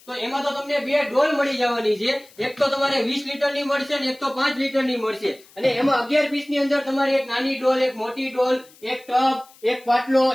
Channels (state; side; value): noise; left; hiss, 26 dB below the sound